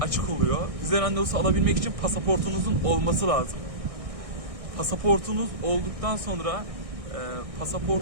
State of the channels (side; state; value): left; late; 1.6 ms